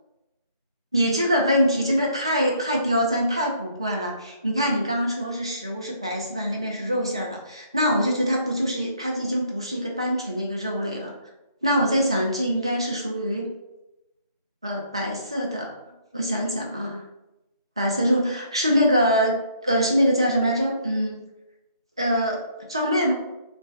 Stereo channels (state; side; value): inverted; both; correlation -0.65